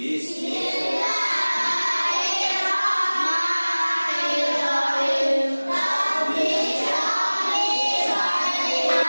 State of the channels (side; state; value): both; inverted; correlation -1.00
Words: Rabbi shrah li sadri.